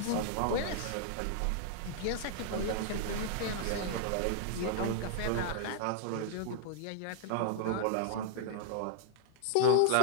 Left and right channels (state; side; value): different; both; correlation -0.01